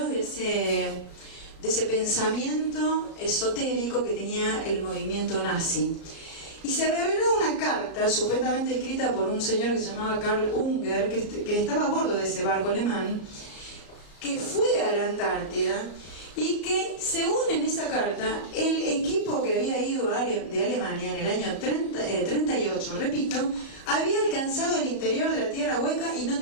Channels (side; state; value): right; late; 34 ms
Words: de ese pensamiento esotérico que tenía el movimiento nazi. Y se reveló una carta supuestamente escrita por un señor que se llamaba Karl Unger, que estaba a bordo de ese barco alemán, que fue a la Antártida y que, según en esa carta, el equipo que había ido de Alemania en el año 38, repito, había alcanzado el interior de la Tierra Hueca y no